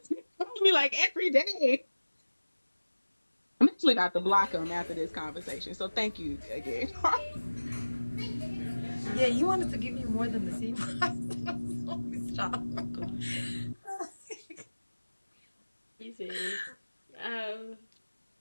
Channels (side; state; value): both; inverted; correlation -1.00